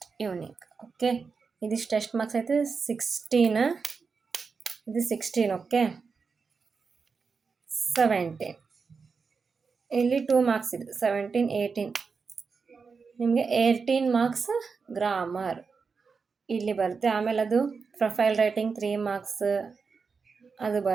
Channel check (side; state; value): left; quieter; 5.1 dB